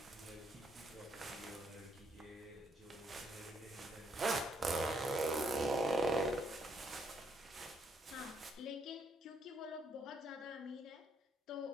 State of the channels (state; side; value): normal; both; correlation 0.72